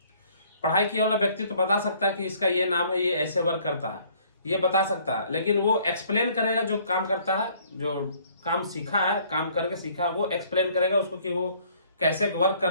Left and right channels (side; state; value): both; inverted; correlation -0.60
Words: पढ़ाई किया वाला व्यक्ति तो बता सकता है कि इसका ये नाम है, ये ऐसे वर्क करता है, ये बता सकता है। लेकिन वो एक्सप्लेन करेगा, जो काम करता है, जो काम सीखा है, काम करके सीखा, वो एक्सप्लेन करेगा उसको कि वो कैसे वर्क